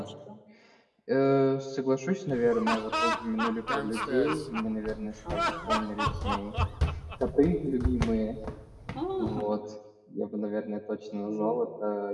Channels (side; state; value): both; identical; correlation 1.00